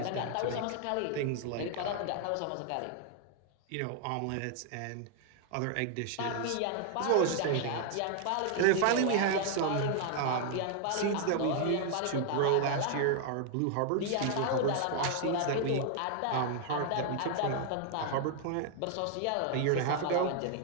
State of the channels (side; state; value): both; different; correlation 0.00